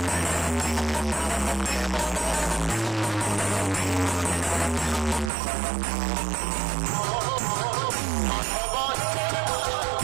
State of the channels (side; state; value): left; drops out; at 5.3 s